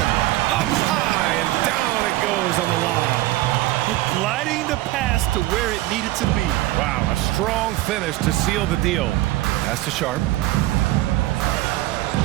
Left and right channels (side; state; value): left; quieter; 17.0 dB